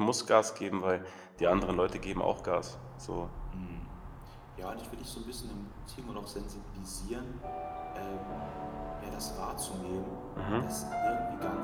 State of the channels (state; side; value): identical; both; correlation 1.00